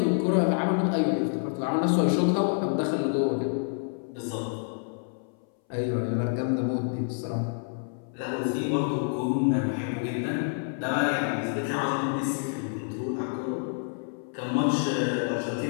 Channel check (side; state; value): right; silent; 59 dB below the other